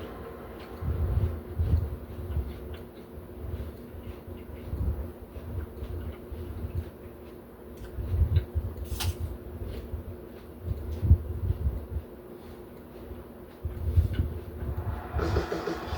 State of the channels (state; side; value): identical; both; correlation 1.00